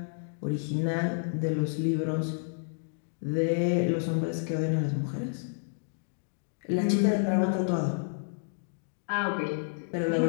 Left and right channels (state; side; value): silent; right; digital silence